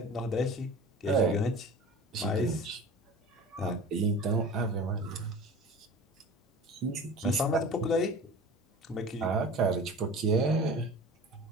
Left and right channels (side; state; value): both; normal; correlation 0.38